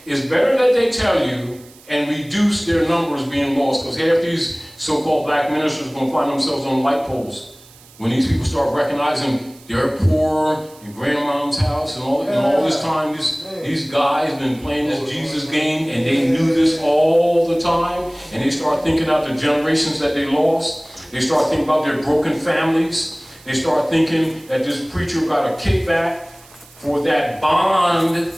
it's better that they tell you and reduce their numbers being lost, because half these so-called black ministers are going to find themselves on light poles. When these people start recognizing they're poor in grandmom's house and all this time, these guys been playing this Jesus game and they knew this all the time, and they start thinking out the generations that they lost. They start thinking about their broken families. They start thinking that this preacher got a kickback for that bond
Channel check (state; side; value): noise; right; hiss, 25 dB below the sound